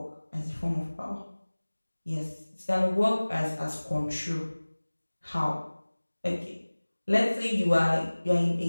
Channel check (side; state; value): both; inverted; correlation -1.00